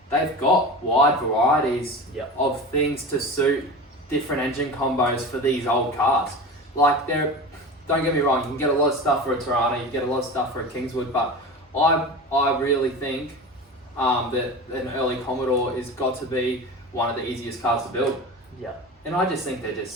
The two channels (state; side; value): normal; both; correlation 0.30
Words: they've got wide varieties of things to suit different engine combos for these old cars. Like, don't get me wrong, you can get a lot of stuff for a Tirana, you can get a lot of stuff for a Kingswood, but I really think that an early Commodore has got to be one of the easiest cars to build. Yeah. And I just think they're just